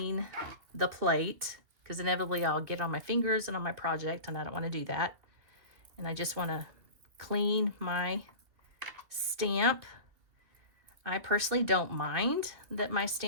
the plate, because inevitably I'll get on my fingers and on my project, and I don't want to do that. And I just want to clean my stamp. I personally don't mind that my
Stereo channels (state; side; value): late; left; 2.7 ms